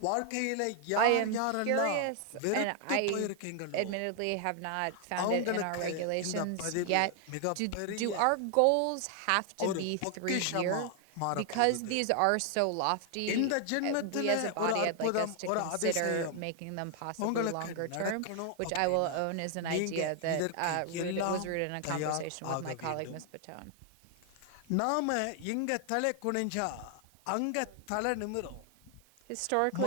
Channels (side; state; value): both; different; correlation 0.00